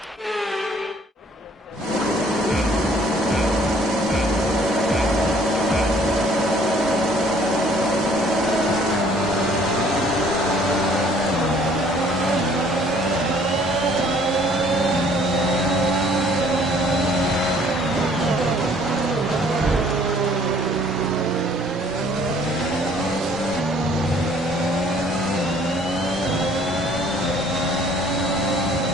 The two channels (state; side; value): normal; both; correlation 0.58